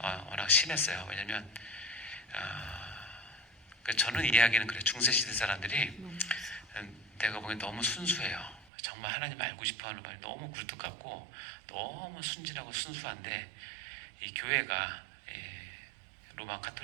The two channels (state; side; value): drops out; left; at 8.7 s